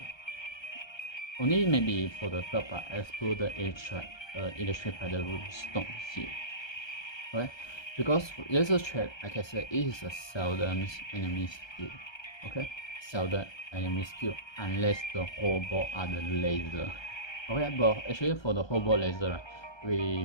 Only maybe for the third part, explore the electric by the runestone here. Okay, because laser trap, like I said, it is a seldom enemy skill. Okay, seldom enemy skill unless the whole board are the laser. Okay, but actually for the whole board laser, right,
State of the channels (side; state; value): right; late; 1.3 ms